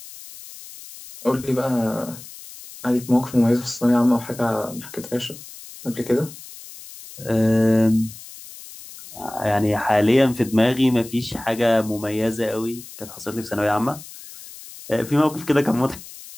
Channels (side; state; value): left; noise; hiss, 16 dB below the sound